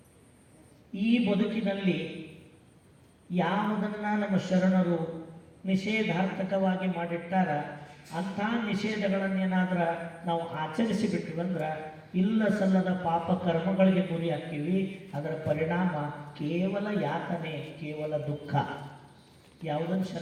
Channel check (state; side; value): identical; both; correlation 1.00